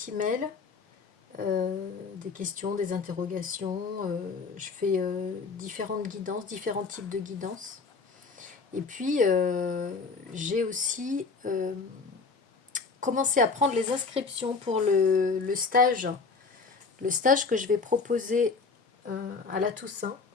mail, des questions, des interrogations. Je fais différentes guidances, différents types de guidances. Et puis, j'ai aussi commencé à prendre les inscriptions pour le stage que je vais proposer à la Toussaint,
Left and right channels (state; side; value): quieter; right; 4.6 dB